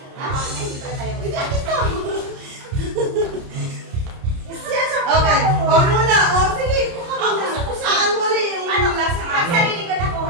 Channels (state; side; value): late; left; 30 ms